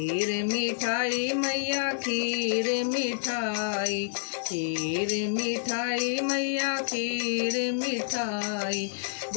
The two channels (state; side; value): silent; right; 59 dB below the other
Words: मिठाई मैया खीर मिठाई, खीर मिठाई मैया खीर मिठाई।